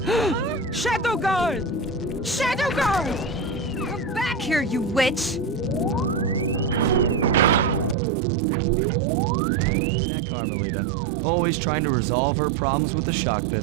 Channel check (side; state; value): left; drops out; at 8.0 s